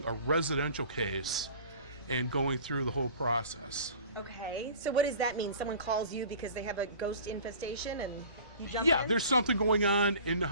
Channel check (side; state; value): both; inverted; correlation -0.44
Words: a residential case and going through the whole process. Okay, so what does that mean? Someone calls you because they have a ghost infestation and you jump in? Yeah, there's something going on in the